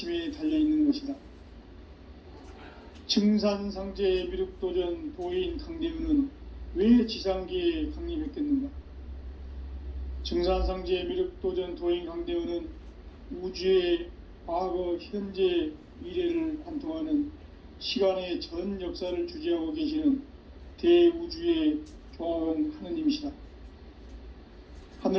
달려있는 것이다. 증산상제 미륵도전 도인 강대우는 왜 지상계에 강림했겠는가? 증산상제 미륵도전 도인 강대우는 우주의 과거, 현재, 미래를 관통하는 시간의 전 역사를 주재하고 계시는 대우주의 조화원 하느님이시다.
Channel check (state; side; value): identical; both; correlation 1.00